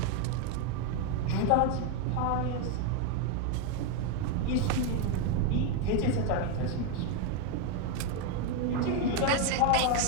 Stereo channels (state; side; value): different; both; correlation 0.01